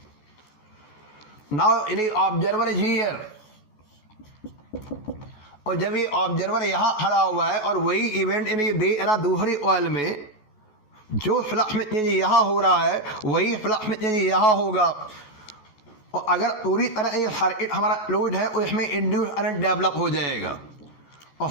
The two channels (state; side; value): late; right; 14 ms